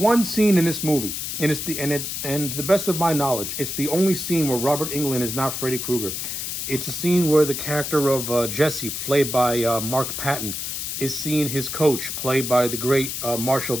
scene in this movie, and to the best of my knowledge, it's the only scene where Robert Englund is not Freddy Krueger. It's a scene where the character of Jesse, played by Mark Patton, is seeing his coach, played by the great Marshall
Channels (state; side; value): noise; left; hiss, 4 dB below the sound